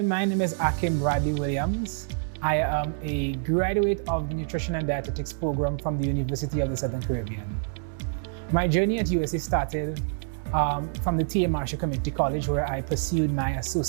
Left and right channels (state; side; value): silent; left; digital silence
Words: my name is Akim Bradley Williams. I am a graduate of the Nutrition and Dietetics program from the University of the Southern Caribbean. My journey at USC started from the T.A. Marshall Community College, where I pursued my